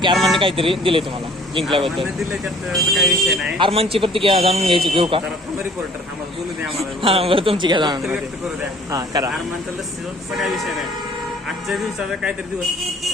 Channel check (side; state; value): both; normal; correlation 0.54